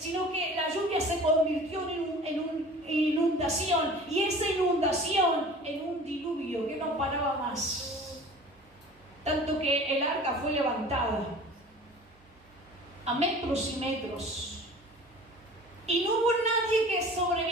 que la lluvia se convirtió en una inundación, y esa inundación en un diluvio que no paraba más. Tanto que el arca fue levantada a metros y metros. Y no hubo nadie que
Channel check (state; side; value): normal; both; correlation 0.42